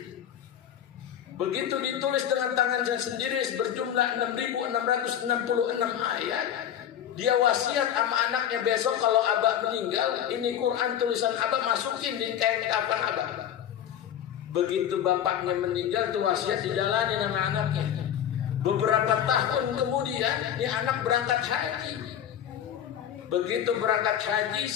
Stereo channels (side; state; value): right; quieter; 10.0 dB